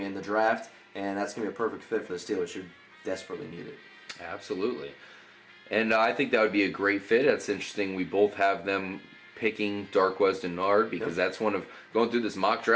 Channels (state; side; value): identical; both; correlation 1.00